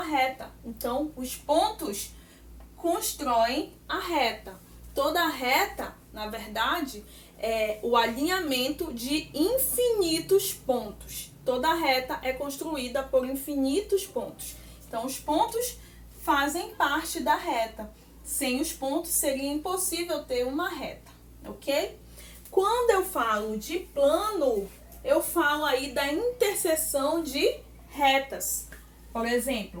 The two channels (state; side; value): identical; both; correlation 1.00